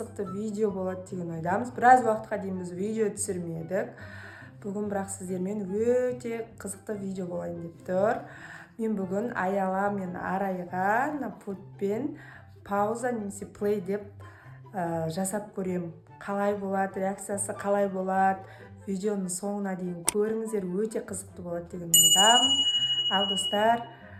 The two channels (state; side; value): identical; both; correlation 1.00